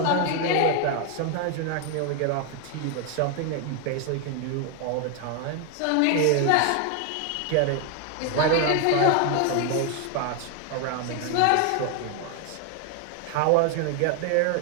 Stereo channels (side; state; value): both; different; correlation 0.01